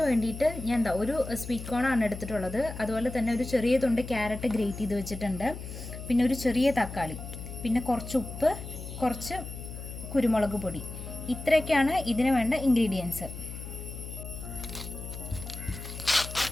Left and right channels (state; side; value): noise; left; hum, 10 dB below the sound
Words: ഞാൻ ഒരു സ്വീറ്റ് കോണാണ് എടുത്തിട്ടുള്ളത്. അതുപോലെ തന്നെ ഒരു ചെറിയ തുണ്ട് ക്യാരറ്റ് ഗ്രേറ്റ് ചെയ്ത് വെച്ചിട്ടുണ്ട്. പിന്നെ ഒരു ചെറിയ തക്കാളി, പിന്നെ കുറച്ച് ഉപ്പ്, കുറച്ച് കുരുമുളക് പൊടി. ഇത്രയൊക്കെയാണ് ഇതിന് വേണ്ട ഇൻഗ്രീഡിയൻസ്.